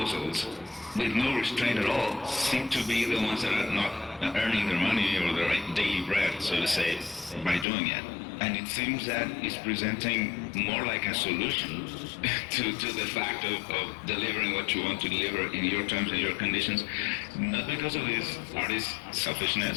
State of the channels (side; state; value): right; drops out; at 7.7 s